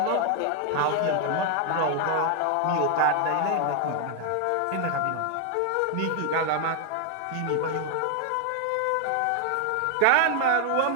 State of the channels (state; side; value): different; both; correlation 0.00